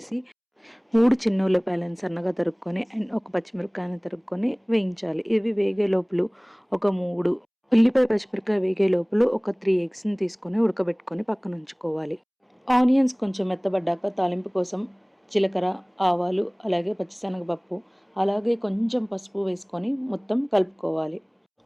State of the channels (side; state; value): both; identical; correlation 1.00